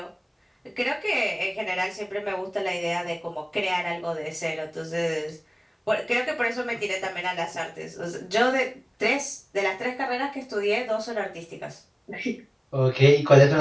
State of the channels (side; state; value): both; identical; correlation 1.00